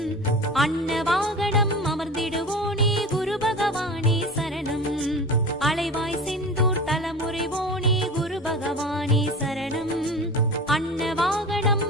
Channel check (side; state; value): both; normal; correlation 0.34